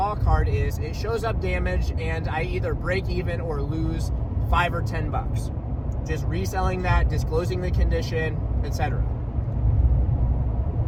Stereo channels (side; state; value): both; identical; correlation 1.00